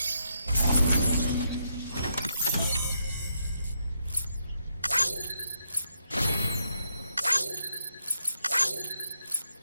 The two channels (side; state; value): both; inverted; correlation -0.77